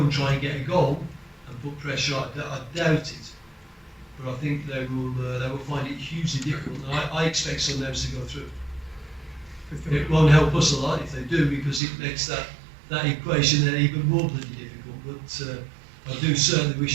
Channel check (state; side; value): drops out; left; at 11.8 s